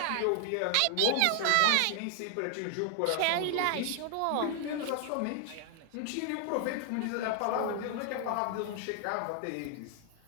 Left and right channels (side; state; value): both; different; correlation 0.00